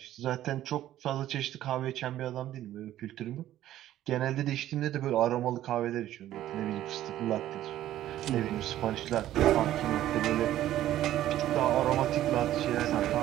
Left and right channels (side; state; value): left; quieter; 13.1 dB